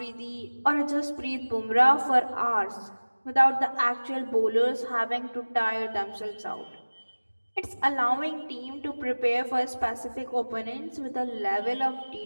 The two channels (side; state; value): both; inverted; correlation -1.00